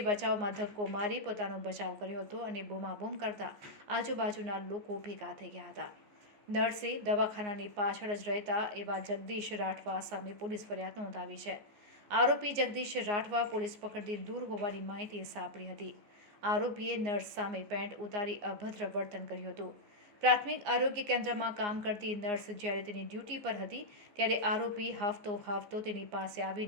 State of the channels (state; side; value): late; left; 14 ms